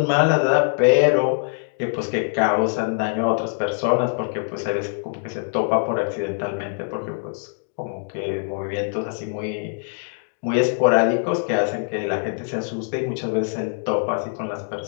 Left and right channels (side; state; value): right; silent; digital silence